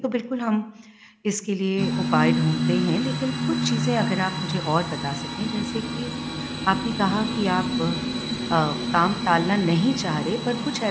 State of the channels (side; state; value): both; identical; correlation 1.00